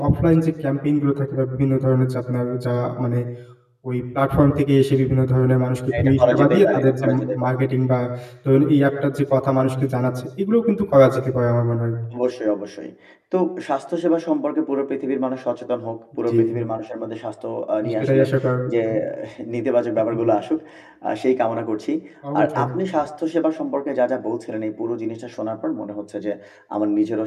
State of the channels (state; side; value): identical; both; correlation 1.00